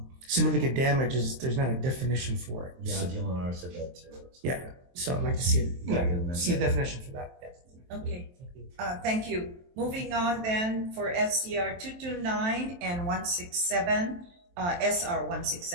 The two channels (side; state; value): left; late; 23 ms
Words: significant damage is, there's not a definition for it. Yeah, DLNR said that too. Yeah, so I'd like to see a definition for that. Yeah. Okay, thank you. Moving on then for SCR 229 and 167, SR